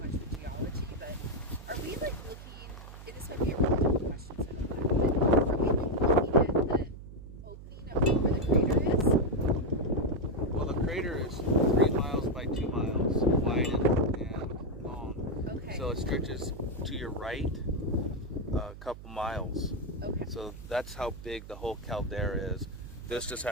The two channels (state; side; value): noise; right; hum, 14 dB below the sound